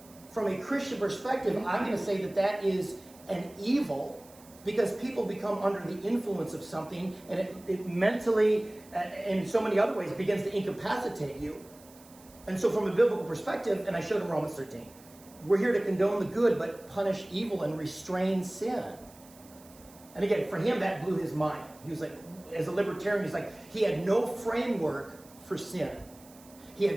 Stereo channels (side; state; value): right; noise; hiss, 24 dB below the sound